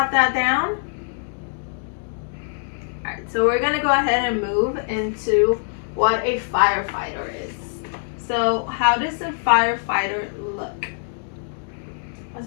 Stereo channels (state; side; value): silent; right; 63 dB below the other